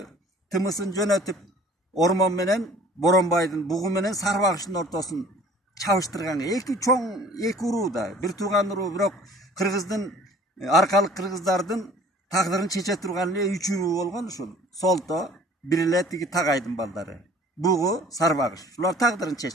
тымысын жөнөтүп Ормон менен Боронбайдын бугу менен Сарбагыштын ортосун чабыштырган эки чоң эки уруу да, бир тууган уруу, бирок кыргыздын аркалык кыргыздардын тагдырын чече турган эле үч уруу болгон ушул. Солто бир эле тиги Тагайдын балдары. Бугу Сарбагыш. Ушулар тагдырын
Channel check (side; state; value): both; normal; correlation 0.50